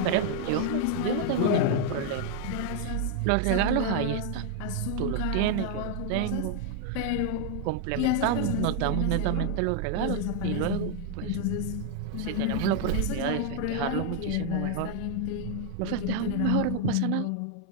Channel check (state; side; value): different; both; correlation 0.00